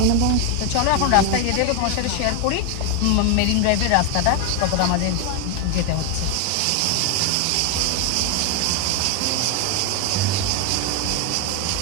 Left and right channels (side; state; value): both; different; correlation 0.01